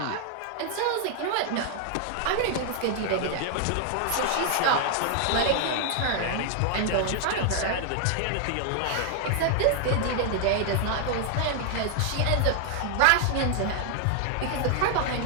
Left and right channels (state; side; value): different; both; correlation 0.00